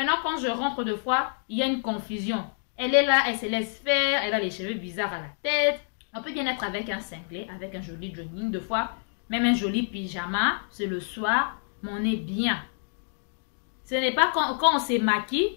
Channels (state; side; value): silent; right; digital silence